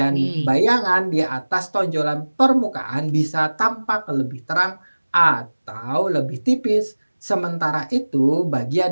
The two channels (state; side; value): inverted; both; correlation -1.00